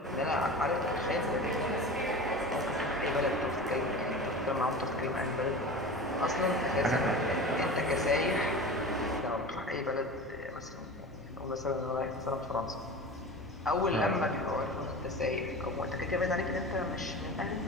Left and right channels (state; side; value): normal; both; correlation 0.32